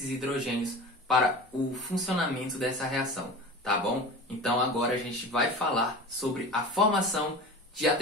hidrogênios para o funcionamento dessa reação, tá bom? Então agora a gente vai falar sobre a formação de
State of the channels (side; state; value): both; normal; correlation 0.34